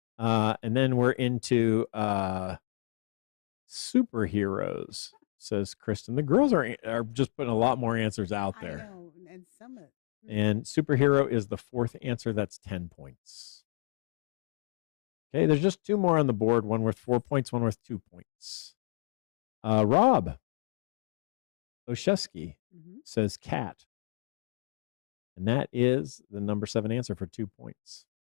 And then we're into superheroes, says Kristen. The girls are just putting a lot more answers out there. I know, and some of And superhero is the 4th answer. That's 10 points. Okay, there's just 2 more on the board. One worth 4 points, one worth 2 points. Rob Oshesky says cat. And that is the number 7 answer for 2 points.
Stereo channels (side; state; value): right; silent; 57 dB below the other